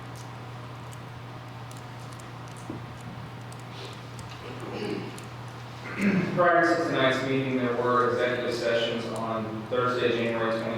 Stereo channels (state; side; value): identical; both; correlation 1.00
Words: Prior to tonight's meeting, there were executive sessions on Thursday, January